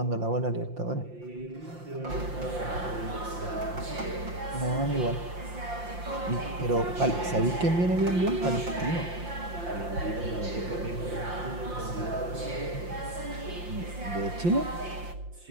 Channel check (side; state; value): left; late; 5.7 ms